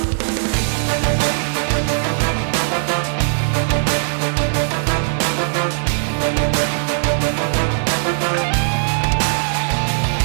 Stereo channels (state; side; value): silent; left; digital silence